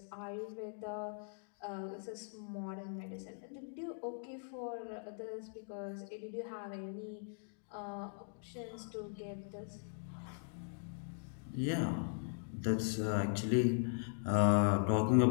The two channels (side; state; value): right; silent; digital silence